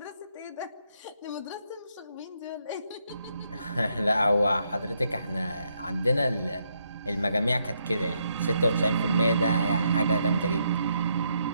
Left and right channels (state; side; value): inverted; both; correlation -0.76